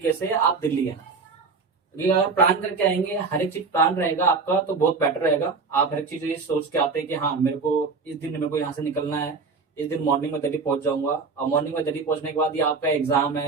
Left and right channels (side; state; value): left; quieter; 4.6 dB